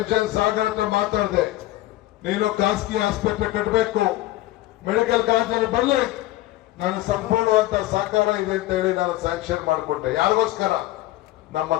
ಸಾಗರ್ ಹತ್ರ ಮಾತಾಡಿದೆ, ನೀನು ಖಾಸಗಿ ಆಸ್ಪತ್ರೆ ಕಟ್ಟಬೇಕು, ಮೆಡಿಕಲ್ ಕಾಲೇಜಲ್ಲಿ ಬರಲಿ, ನಾನು ಸಂಪೂರ್ಣವಂತ ಸಹಕಾರ ಇದೆ ಅಂತ ಹೇಳಿ ನಾನು ಸ್ಯಾಂಕ್ಷನ್ ಮಾಡಿಕೊಟ್ಟೆ. ಯಾರಿಗೋಸ್ಕರ? ನಮ್ಮ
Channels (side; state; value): right; quieter; 16.4 dB